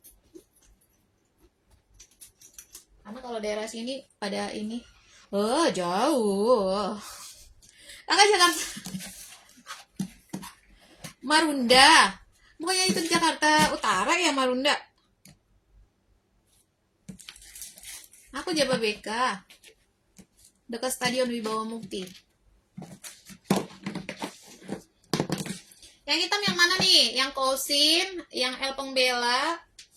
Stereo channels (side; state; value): both; identical; correlation 1.00